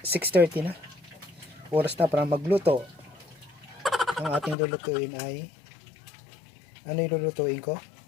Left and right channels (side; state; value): right; drops out; at 4.5 s